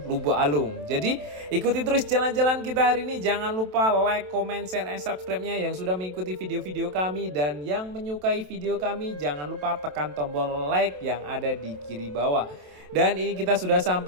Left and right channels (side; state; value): left; late; 27 ms